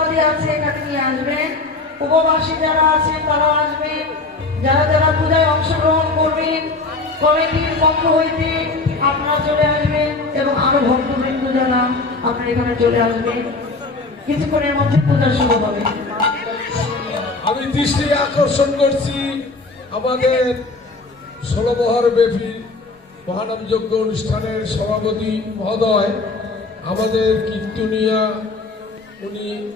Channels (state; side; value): quieter; right; 3.6 dB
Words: আছে এখানে নিয়ে আসবেন। উপবাসী যারা আছেন তারাও আসবেন। যারা যারা পূজায় অংশগ্রহণ করবেন কমিটির পক্ষ হইতে আপনারা চলে আসবেন এবং আরো ভক্তবৃন্দ যারা আপনারা এখানে চলে আসবেন। কিছুক্ষণের মধ্যে পূজা শুরু হবে। আমি দৃষ্টি আকর্ষণ করছি আমাদের 16 বছর ব্যাপী মহানামযজ্ঞ অনুষ্ঠানের সভাপতি মহোদয়, আমাদের কীর্তনিয়া, উনি